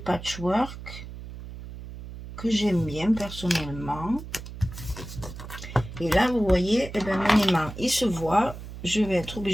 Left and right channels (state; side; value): noise; right; hum, 12 dB below the sound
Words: que j'aime bien personnellement. Et là, vous voyez, eh ben, mon aimant, il se voit. Je vais être